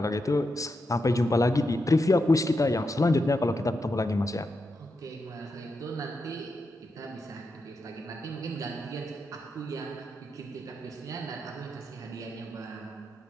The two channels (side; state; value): both; normal; correlation 0.85